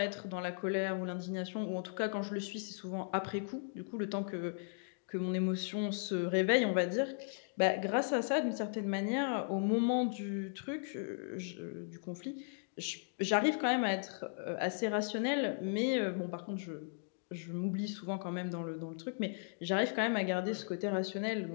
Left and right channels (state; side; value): silent; right; digital silence